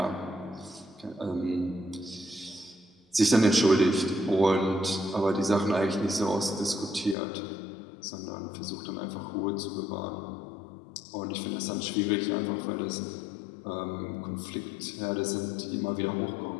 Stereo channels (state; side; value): drops out; right; at 7.2 s